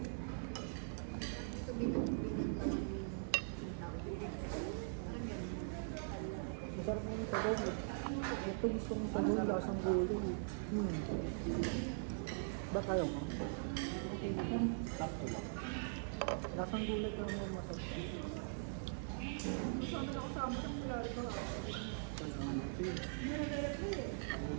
Masarap na yung sabaw. Ito gusto mong sabaw, lasang gulay. Ba tayo mo? Sakto lang. Lasang gulay ka mo masarap. Sana na ako sa amo ng mulari ko.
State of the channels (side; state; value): left; silent; digital silence